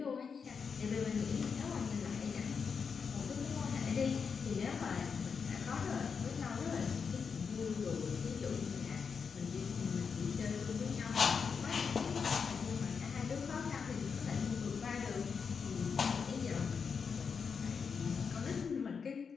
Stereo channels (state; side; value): quieter; right; 5.9 dB